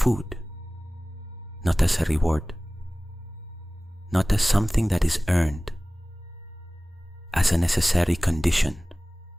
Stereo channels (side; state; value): both; normal; correlation 0.98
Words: not as a reward, not as something that is earned, as a necessary condition